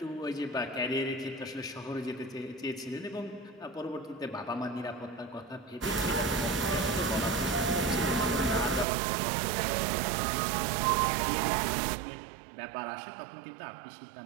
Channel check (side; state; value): left; drops out; at 8.8 s